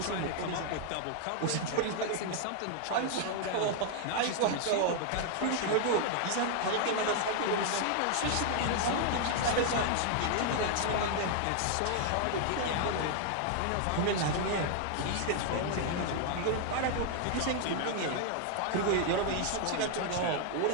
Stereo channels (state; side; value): different; both; correlation 0.00